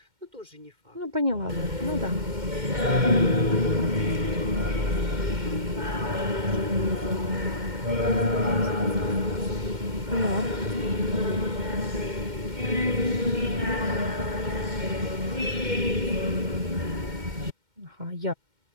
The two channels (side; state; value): left; late; 2.1 ms